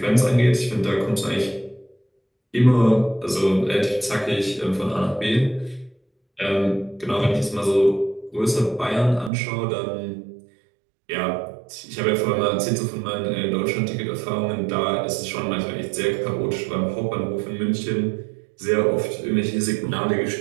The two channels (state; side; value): drops out; left; at 9.3 s